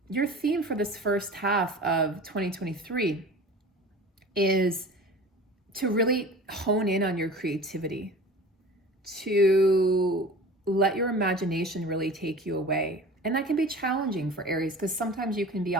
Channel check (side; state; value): both; normal; correlation 0.39